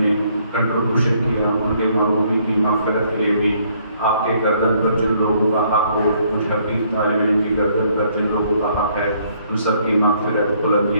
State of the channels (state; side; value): inverted; both; correlation -0.66